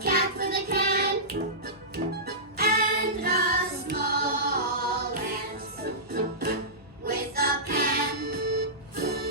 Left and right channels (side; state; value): both; normal; correlation -0.17